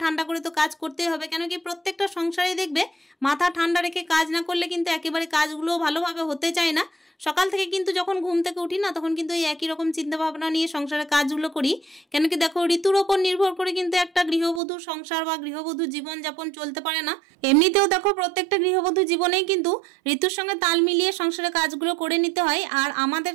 ঠান্ডা করে তো কাজ করতেই হবে, কেন কি প্রত্যেকটা সংসারে দেখবে মাথা ঠান্ডা রেখে কাজ না করলে কিন্তু একেবারে কাজগুলো ভালোভাবে হতে চায় না। সকাল থেকে কিন্তু যখন ঘুম থেকে উঠি না, তখন কিন্তু এই একই রকম চিন্তা ভাবনা নিয়ে সংসারের কাজগুলো করি, কেন কি দেখো ঋতুর ওপর নির্ভর করে কিন্তু একটা গৃহবধূর সংসার বা গৃহবধূ জীবনযাপন চলতে পারে না। এমনিতেও দেখো প্রত্যেকটা গৃহবধূ জীবনেই কিন্তু ঋতুর সঙ্গে তাল মিলিয়ে সংসারের কাজগুলো করে নিতে হয়। আর আমাদের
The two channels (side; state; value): left; drops out; at 14.6 s